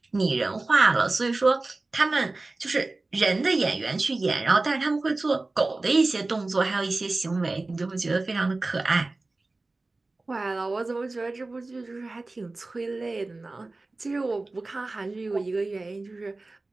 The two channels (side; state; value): left; quieter; 3.2 dB